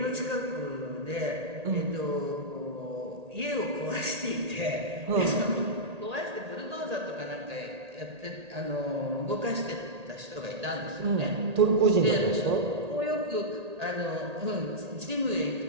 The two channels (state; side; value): late; left; 1.8 ms